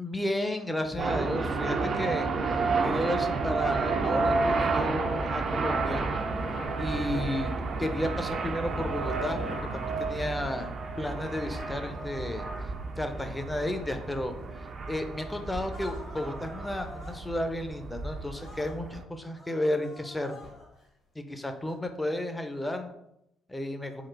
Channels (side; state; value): both; normal; correlation 0.82